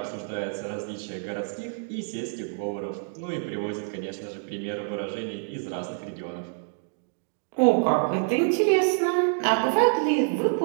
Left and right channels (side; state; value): left; silent; digital silence